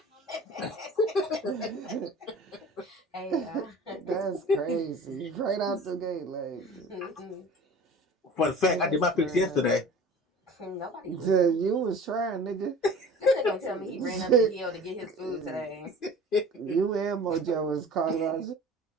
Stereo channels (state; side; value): normal; both; correlation 0.42